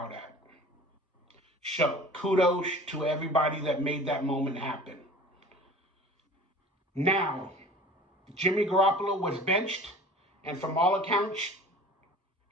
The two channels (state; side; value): normal; both; correlation 0.42